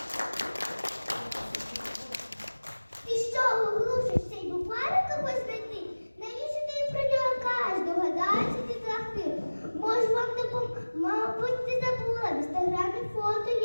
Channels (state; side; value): inverted; both; correlation -1.00